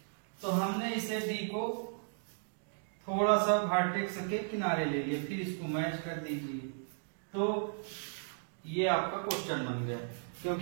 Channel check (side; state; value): left; silent; digital silence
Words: तो हमने इसे डी को थोड़ा सा वर्टेक्स के किनारे ले लिया, फिर इसको मैच कर दीजिए। तो ये आपका क्वेश्चन बन गया,